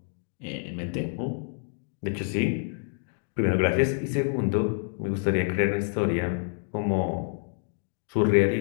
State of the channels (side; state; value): right; silent; digital silence